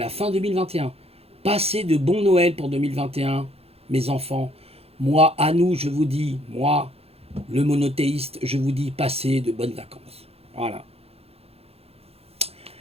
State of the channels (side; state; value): left; late; 0.29 ms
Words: fin 2021. Passez de bons Noël pour 2021, mes enfants. Moi, à nous, je vous dis, moi, le monothéiste, je vous dis, passez de bonnes vacances. Voilà.